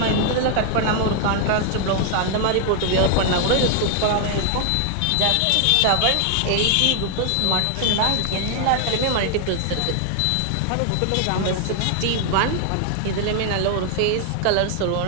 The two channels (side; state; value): both; different; correlation 0.00